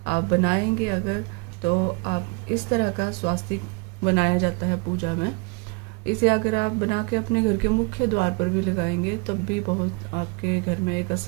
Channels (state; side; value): quieter; left; 29.5 dB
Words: आप बनाएंगे अगर, तो आप इस तरह का स्वास्तिक बनाया जाता है पूजा में। इसे अगर आप बना के अपने घर के मुख्य द्वार पर भी लगाएंगे तब भी बहुत आपके घर में एक